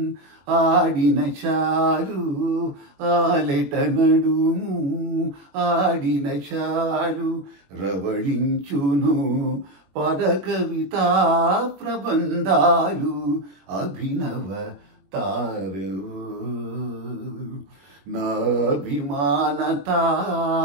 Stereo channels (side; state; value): left; late; 21 ms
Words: ఆడిన చాలు ఆలెట నడుము ఆడిన చాలు రవళించును పద కవితా ప్రబంధాలు అభినవ తారవో నాభిమాన